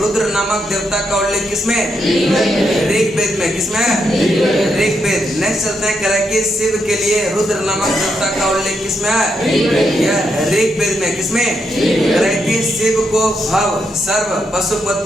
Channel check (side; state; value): both; normal; correlation 0.80